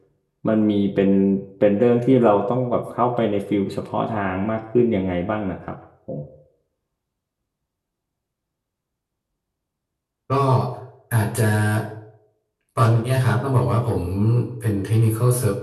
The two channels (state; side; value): identical; both; correlation 1.00